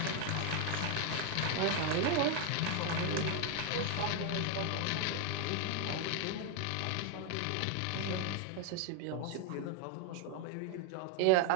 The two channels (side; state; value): both; different; correlation 0.01